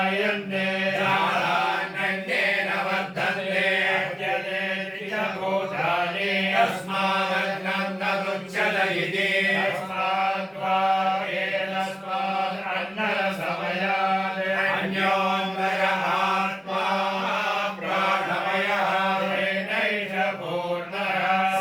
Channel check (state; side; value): identical; both; correlation 1.00